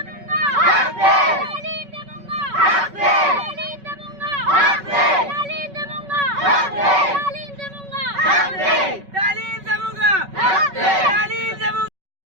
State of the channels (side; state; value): left; late; 5.3 ms